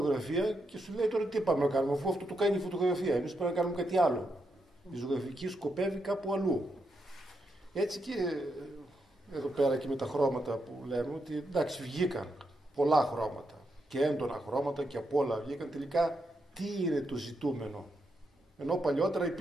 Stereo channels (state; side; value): normal; both; correlation 0.82